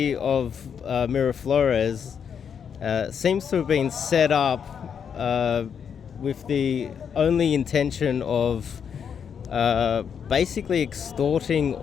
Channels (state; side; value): quieter; right; 7.4 dB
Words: of Miraflores seems to have been set up with the only intention of basically extorting